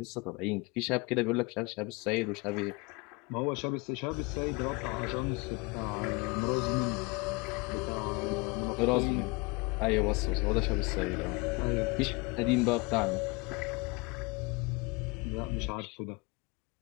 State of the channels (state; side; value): quieter; right; 27.2 dB